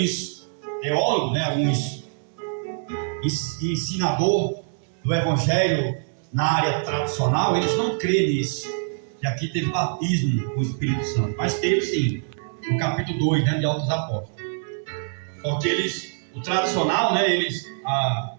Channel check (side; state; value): left; silent; 62 dB below the other